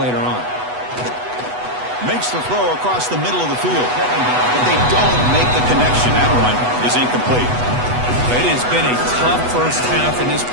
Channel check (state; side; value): late; left; 8.1 ms